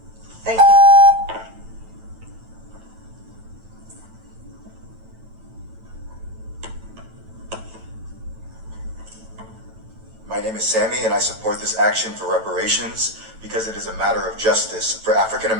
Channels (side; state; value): left; late; 9.0 ms